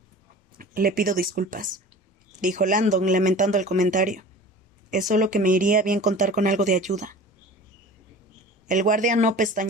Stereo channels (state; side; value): normal; both; correlation 0.40